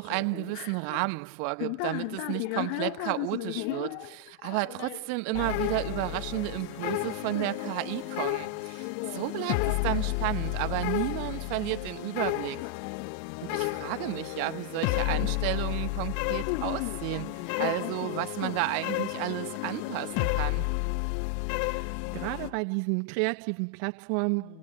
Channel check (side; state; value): both; different; correlation 0.00